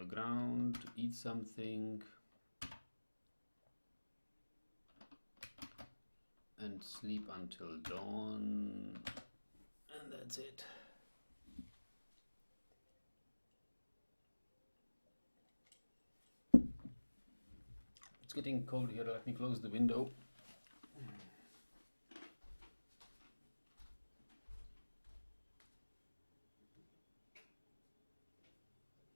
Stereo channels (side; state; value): both; inverted; correlation -1.00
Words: ground, eat something, and sleep until dawn. And that's it. It's getting cold here. Let me close the window.